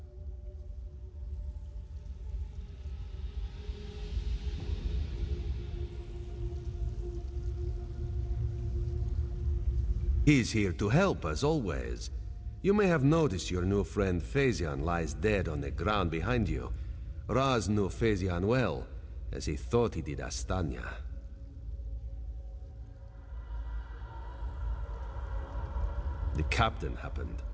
He's here to help, as always. You may have noticed your new friend Phazion lies dead on the ground behind you. Raz knew Phazion well, as he thought he did Astanya. The captain happened.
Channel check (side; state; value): both; identical; correlation 1.00